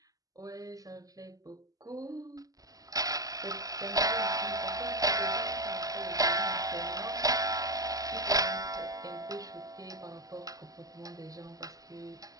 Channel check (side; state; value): left; late; 0.17 ms